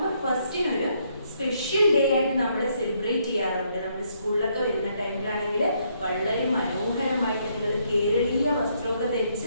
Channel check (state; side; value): inverted; both; correlation -0.72